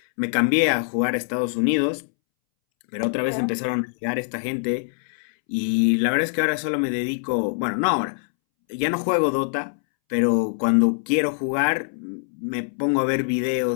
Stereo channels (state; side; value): silent; right; 63 dB below the other